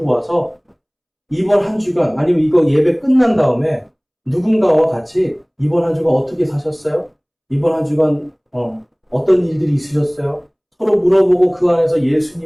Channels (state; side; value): identical; both; correlation 1.00